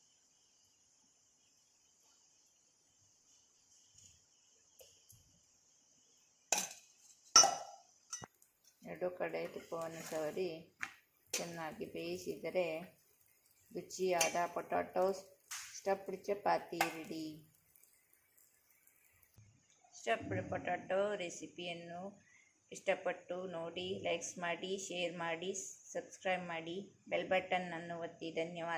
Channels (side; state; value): both; identical; correlation 1.00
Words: ಎರಡು ಕಡೆ ತುಪ್ಪವನ್ನು ಸವರಿ ಚೆನ್ನಾಗಿ ಬೇಯಿಸಿದರೆ ರುಚಿಯಾದ potato stuffed chapati ready. Stuffed potato ರೆಸಿಪಿಯನ್ನು ಇಷ್ಟಪಟ್ಟು ನೋಡಿ, ಲೈಕ್ಸ್ ಮಾಡಿ, ಶೇರ್ ಮಾಡಿ, ಸಬ್ಸ್ಕ್ರೈಬ್ ಮಾಡಿ, ಬೆಲ್ ಬಟನ್ ಅನ್ನು ಒತ್ತಿ.